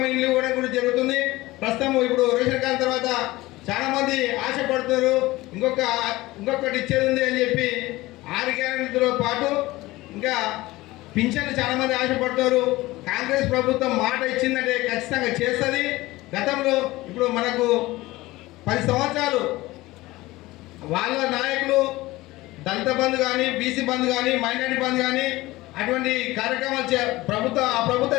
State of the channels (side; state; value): right; quieter; 19.1 dB